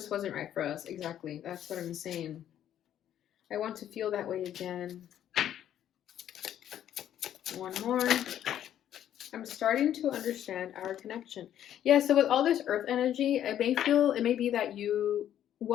wasn't right for us. Exactly. That's what I'm saying. I want to feel that way again. One more. I'm starting to understand our connection. Yeah, so with all this earth energy, it may be that you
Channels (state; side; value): quieter; right; 10.8 dB